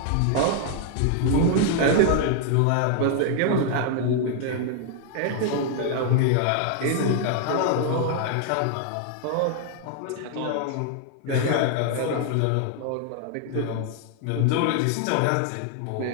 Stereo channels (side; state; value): both; different; correlation 0.00